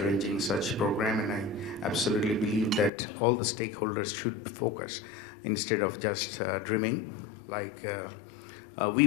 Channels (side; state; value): right; drops out; at 2.9 s